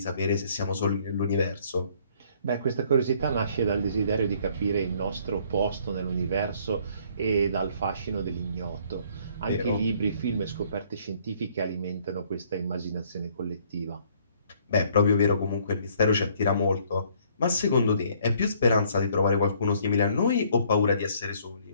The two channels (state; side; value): inverted; both; correlation -0.62